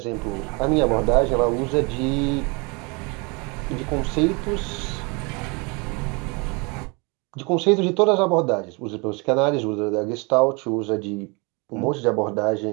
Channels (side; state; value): left; quieter; 29.8 dB